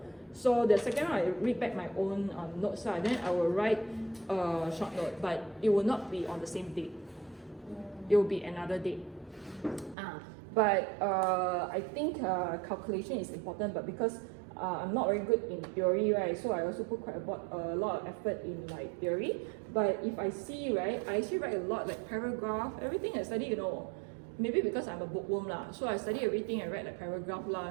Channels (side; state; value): left; drops out; at 10.0 s